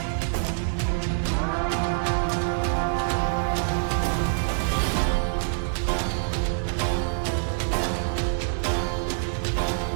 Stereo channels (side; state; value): left; silent; 61 dB below the other